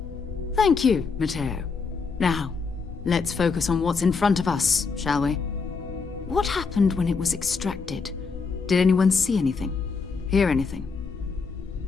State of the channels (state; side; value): quieter; right; 4.9 dB